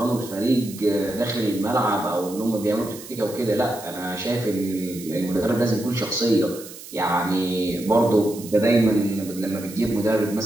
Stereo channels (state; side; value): noise; right; hiss, 15 dB below the sound